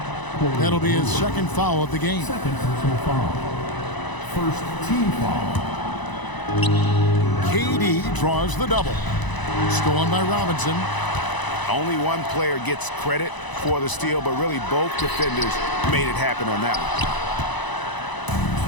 That'll be his second foul of the game. Second personal foul. First team foul. KD draws the double. Stolen by Robinson. Only one player gets credit for the steal, but really both defenders made it happen on that one.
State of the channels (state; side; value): late; right; 1.0 ms